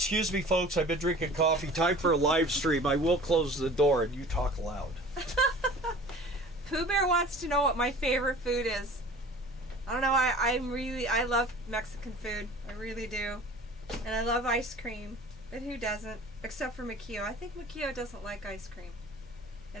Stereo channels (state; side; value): normal; both; correlation 0.43